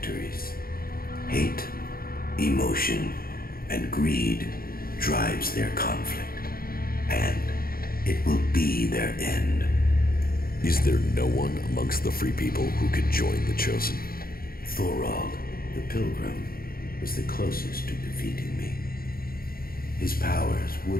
Hate, emotion, and greed drives their conflict, and it will be their end. Is there no one amongst the Free People who could join the Chosen? Thorald, the Pilgrim, was the closest to defeating me. His powers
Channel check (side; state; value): right; late; 0.43 ms